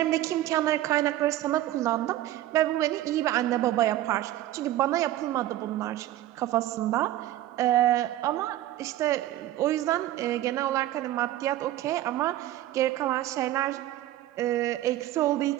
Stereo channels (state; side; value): quieter; left; 14.3 dB